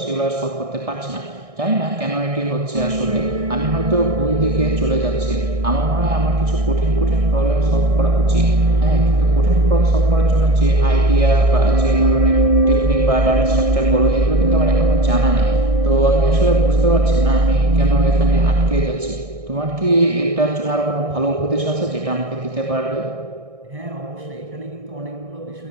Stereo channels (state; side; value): late; left; 1.6 ms